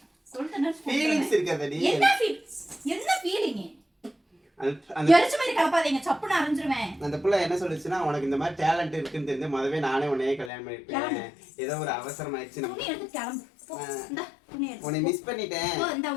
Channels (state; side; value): drops out; right; at 10.5 s